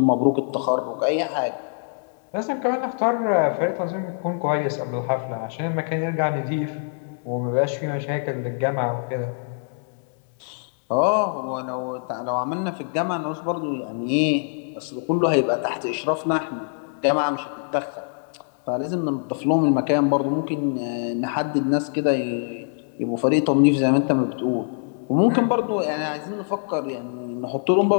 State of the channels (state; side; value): silent; right; 63 dB below the other